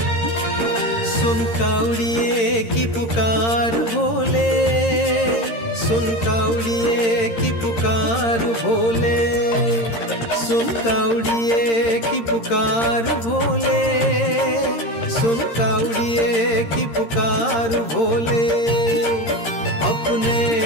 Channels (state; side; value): late; right; 13 ms